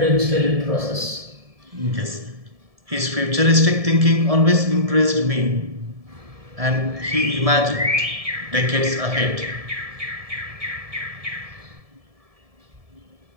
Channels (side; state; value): left; late; 1.7 ms